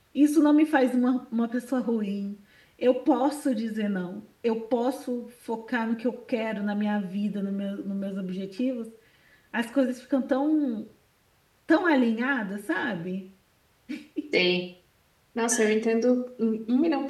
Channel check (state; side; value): identical; both; correlation 1.00